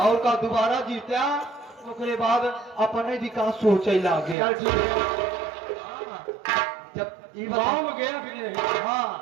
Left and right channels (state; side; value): drops out; left; at 4.4 s